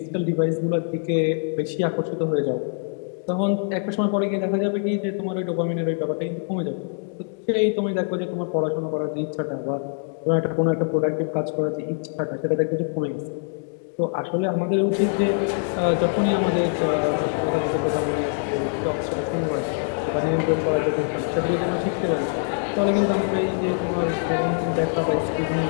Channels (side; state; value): right; silent; 63 dB below the other